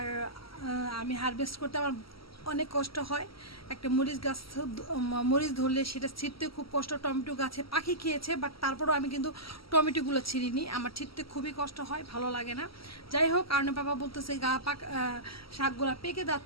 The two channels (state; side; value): late; right; 0.75 ms